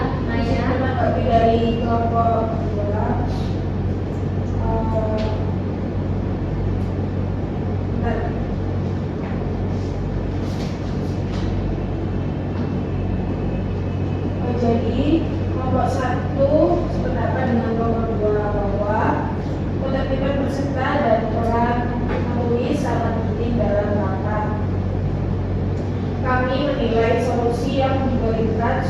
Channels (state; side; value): identical; both; correlation 1.00